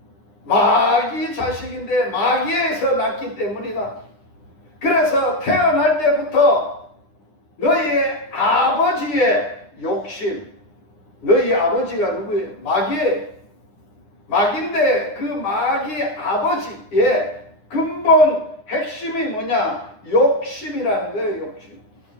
마귀 자식인데 마귀에서 났기 때문이다. 그래서 태어날 때부터 너희의 아버지의 욕심, 너희 아버지가 누구예요? 마귀예요. 마귀인데 그 마귀 아버지의 근본 핵심이 뭐냐? 욕심이라는 거예요. 욕심.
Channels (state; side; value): late; right; 9.9 ms